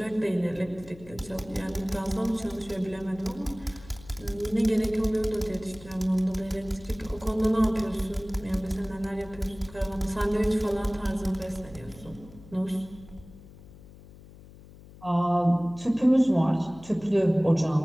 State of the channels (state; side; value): noise; left; hum, 20 dB below the sound